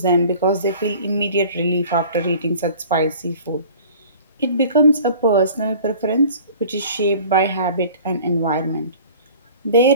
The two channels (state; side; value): inverted; both; correlation -0.46